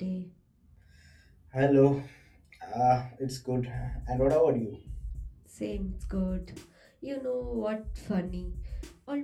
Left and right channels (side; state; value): both; identical; correlation 1.00